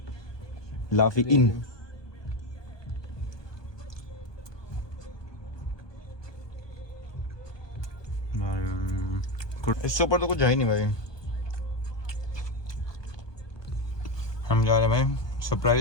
लाफी इन। इससे ऊपर तो कुछ है ही नहीं भाई। हम जा रहे हैं भाई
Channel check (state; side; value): late; right; 1.2 ms